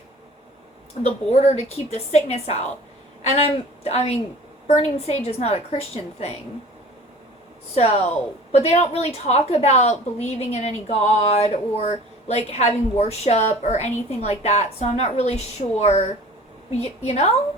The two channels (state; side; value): normal; both; correlation 0.44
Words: the border to keep the sickness out. And I mean, burning sage is not a Christian thing. So, but they don't really talk about believing in any god or like having worship or anything like that. So I'm not really sure, you know?